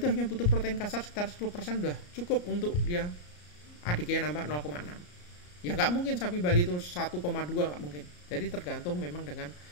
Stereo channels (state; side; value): late; right; 34 ms